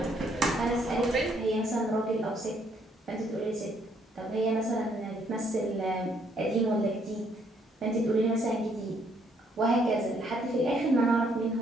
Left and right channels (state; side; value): normal; both; correlation 0.69